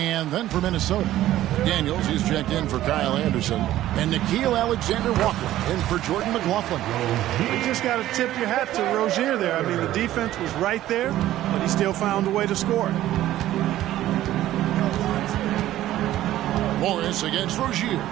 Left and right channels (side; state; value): left; quieter; 13.9 dB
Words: then for Minnesota, Daniels, he's checked in for Kyle Anderson, and Nickeil Alexander-Walker in for Jordan McLaughlin. You just got to tip your hat to Rozier there. I mean, the defense was right there, but he still found a way to score. Morris against Rozier.